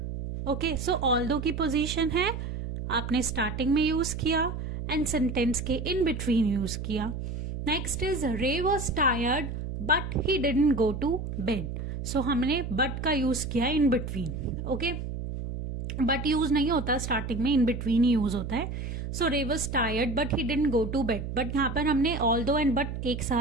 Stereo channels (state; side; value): noise; right; hum, 5 dB below the sound